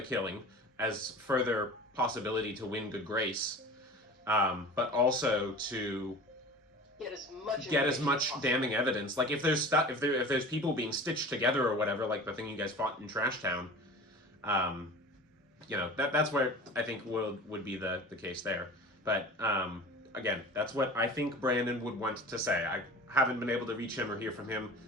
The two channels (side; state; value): both; normal; correlation 0.38